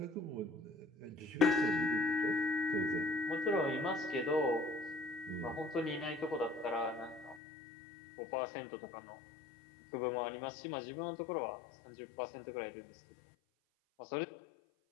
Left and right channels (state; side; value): drops out; right; at 7.4 s